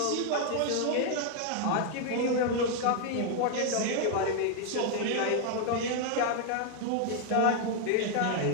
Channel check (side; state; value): both; different; correlation 0.00